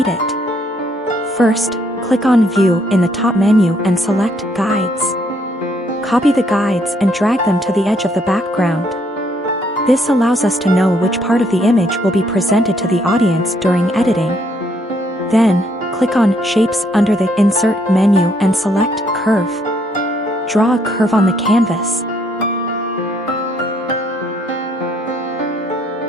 it. First, click on View in the top menu and select Guides. Copy the guides and drag them to the edge of the background. This allows us to know which part of the image will be presented to the audience during editing. Then, click on Shapes under the Insert menu and select Curve. Draw a curve on the canvas.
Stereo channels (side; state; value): both; normal; correlation 0.69